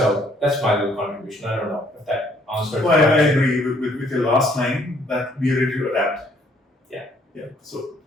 that's my little contribution. I don't know if that answers. Well, I agree with your last line that we are ready to adapt. Yeah. So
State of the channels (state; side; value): normal; both; correlation 0.64